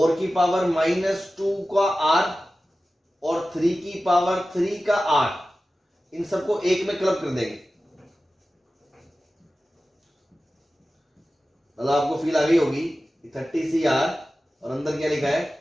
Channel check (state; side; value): normal; both; correlation 0.95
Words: की पावर -2 का r और 3 की पावर 3 का r, इन सबको एक में क्लब कर देंगे। मतलब आपको फील आ गई होगी 30cr और अंदर क्या लिखा है